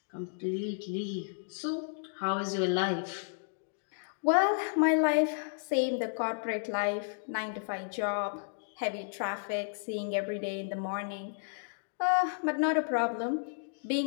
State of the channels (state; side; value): silent; right; digital silence